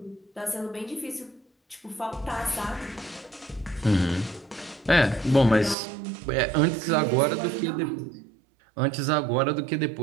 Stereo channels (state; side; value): drops out; left; at 5.8 s